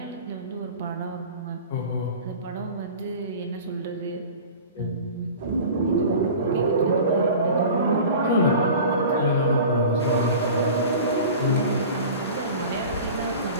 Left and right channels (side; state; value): both; inverted; correlation -0.38